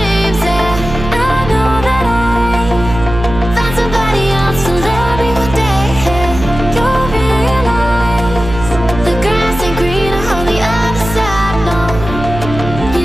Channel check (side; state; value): right; noise; hum, 9 dB below the sound